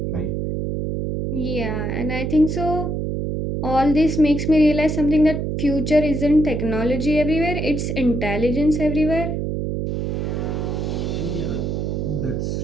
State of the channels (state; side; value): noise; right; hum, 2 dB below the sound